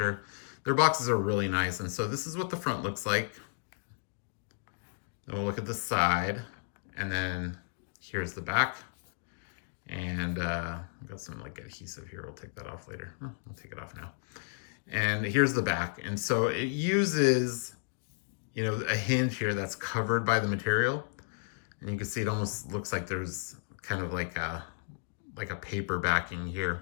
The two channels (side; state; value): right; silent; digital silence